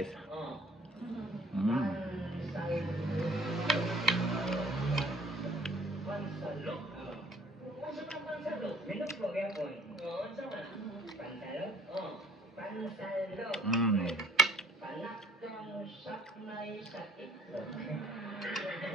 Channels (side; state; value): both; normal; correlation 0.57